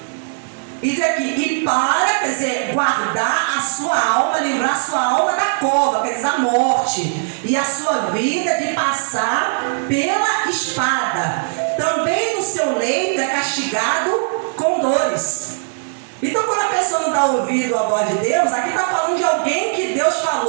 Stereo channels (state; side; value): silent; left; digital silence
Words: E diz aqui, e para, quer dizer, guardar a sua alma, livrar a sua alma da cova, quer dizer, a morte, e a sua vida de passar pela espada. Também no seu leito é castigado com dores. Então, quando a pessoa não dá ouvido à voz de Deus, aqui está falando de alguém que Deus